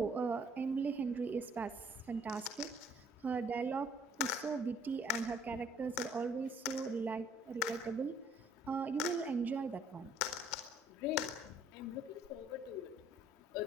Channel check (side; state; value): both; normal; correlation 0.61